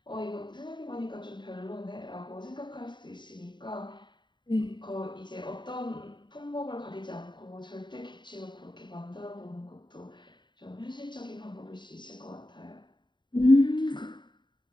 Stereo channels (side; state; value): right; late; 0.22 ms